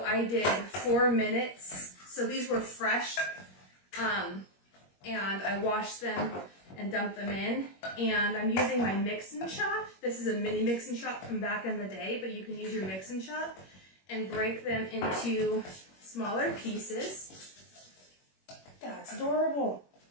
I did 4 minutes. So these were fresh. And I washed them and dumped them in. And I'm using my mix and chop. This is a mini mix and chop from back in the day, but you can use your mix and chop and break them into smaller pieces. That's adorable.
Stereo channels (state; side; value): late; right; 21 ms